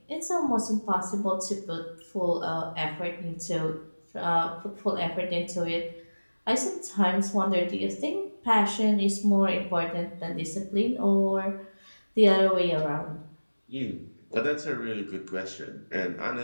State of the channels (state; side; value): inverted; both; correlation -1.00